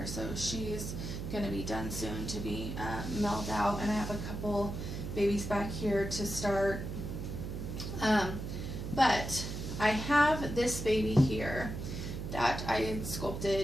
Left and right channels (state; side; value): noise; right; hum, 5 dB below the sound